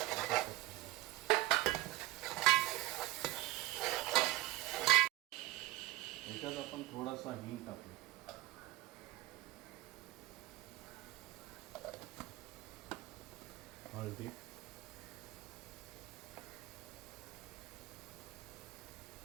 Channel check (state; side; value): quieter; left; 18.1 dB